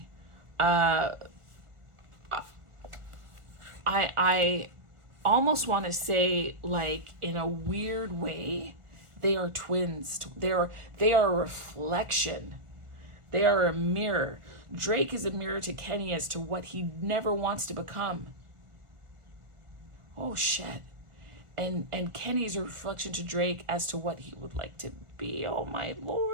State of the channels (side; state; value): left; late; 1.4 ms